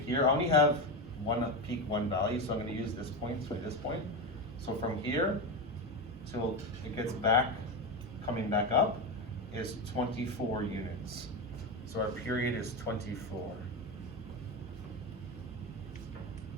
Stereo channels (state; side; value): normal; both; correlation 0.15